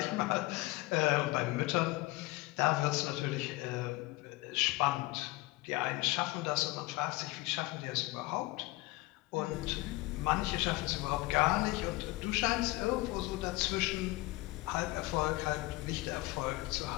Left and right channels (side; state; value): right; quieter; 20.7 dB